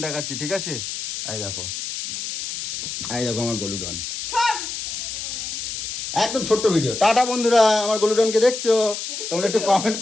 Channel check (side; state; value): left; noise; hiss, 6 dB below the sound